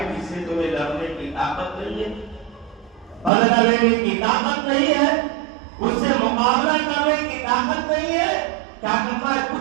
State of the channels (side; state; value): left; drops out; at 3.3 s